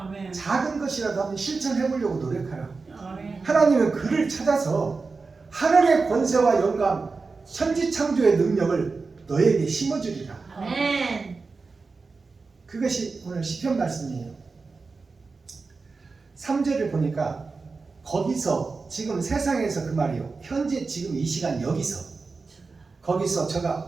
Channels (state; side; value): quieter; left; 4.2 dB